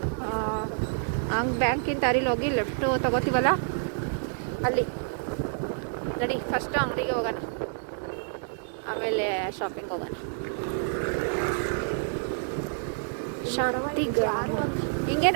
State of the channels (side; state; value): left; silent; digital silence